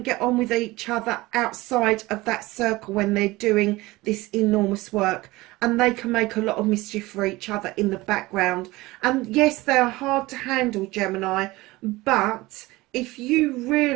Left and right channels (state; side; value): quieter; left; 20.2 dB